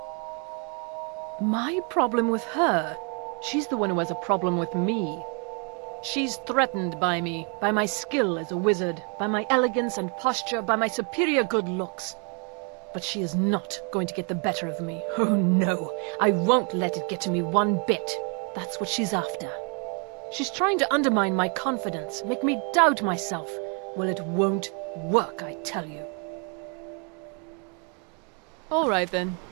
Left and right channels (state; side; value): quieter; left; 36.9 dB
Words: My problem with her? She's the one who has a problem with me. She's threatened by me, by my skill as a wizard, by my elegance and posture, by my superior good looks. But she is not going to get the better of me. Oh no, I won't let it get to me one bit. That's what she's after. She's trying to undermine my confidence, make me doubt myself. Well, it won't work, I tell you. All right then.